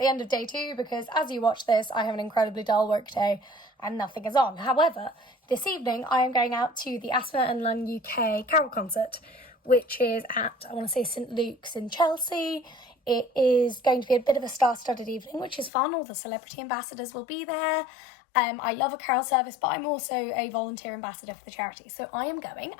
end of day 2 because as you watch this I have an incredibly dull work day and nothing is on. However, this evening I am going out to the Asthma Lung UK carol concert, which is at, I want to say, St Luke's in Chelsea. It is going to be a bit of a star-studded evening, which is fun. All the celebrity ambassadors will be there. I love a carol service, but I'm also a volunteer ambassador for the charity. So I am going,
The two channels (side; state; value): right; drops out; at 15.7 s